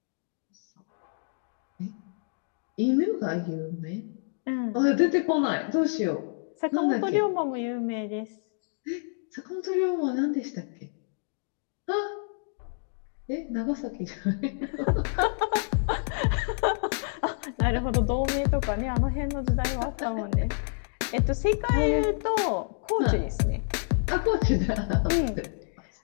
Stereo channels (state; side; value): silent; right; digital silence